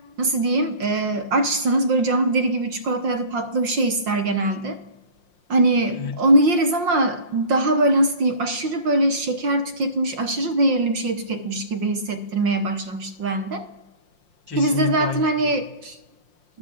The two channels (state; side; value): late; left; 5.7 ms